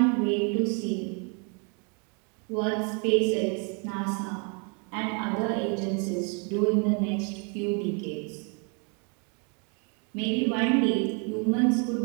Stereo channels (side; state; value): left; quieter; 35.9 dB